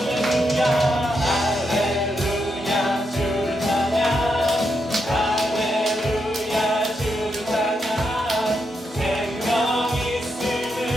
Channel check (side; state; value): both; normal; correlation 0.82